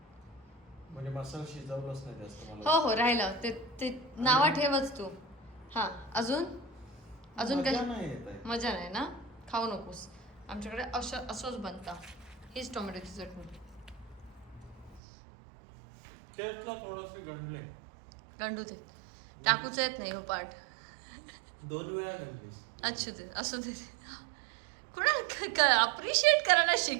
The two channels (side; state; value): left; drops out; at 15.0 s